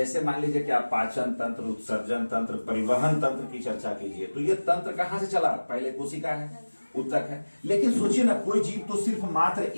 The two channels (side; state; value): both; inverted; correlation -1.00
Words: मान लीजिए कि आप पाचन तंत्र, उत्सर्जन तंत्र, परिवहन तंत्र की चर्चा कीजिए, तो ये तंत्र कहां से चला, पहले कोशिका है, उत्तक है। लेकिन सोचिए ना, कोई जीव तो सिर्फ मात्र